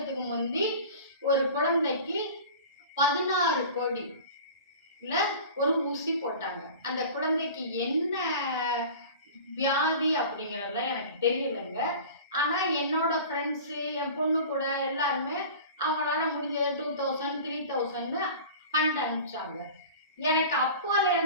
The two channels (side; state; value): both; inverted; correlation -0.38